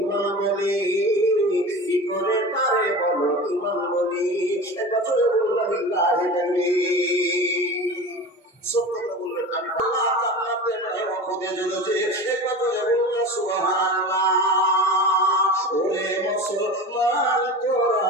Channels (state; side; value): normal; both; correlation 0.32